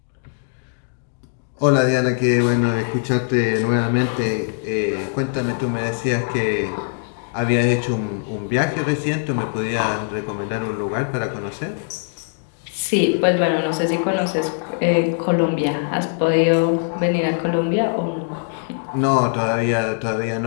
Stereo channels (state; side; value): silent; right; digital silence